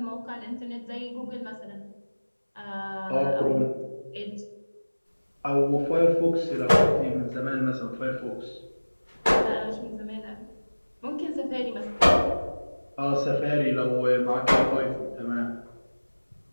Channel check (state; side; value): inverted; both; correlation -1.00